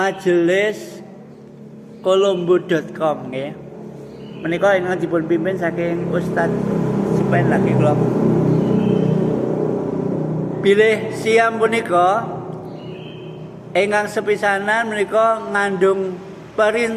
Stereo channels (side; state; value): both; identical; correlation 1.00